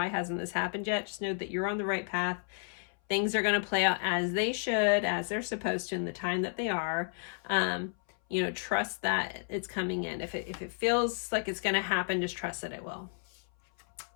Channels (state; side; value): silent; right; 56 dB below the other